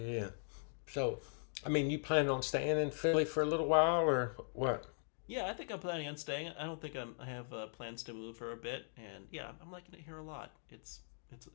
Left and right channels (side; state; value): right; silent; digital silence